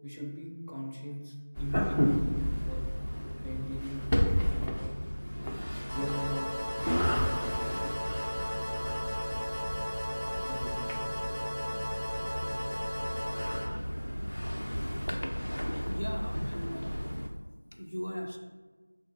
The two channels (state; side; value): inverted; both; correlation -1.00